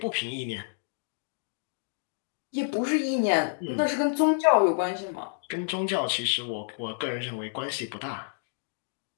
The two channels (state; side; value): silent; right; digital silence